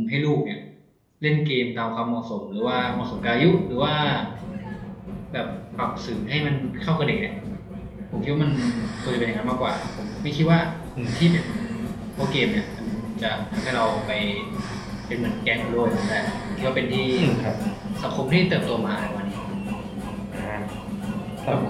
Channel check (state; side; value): identical; both; correlation 1.00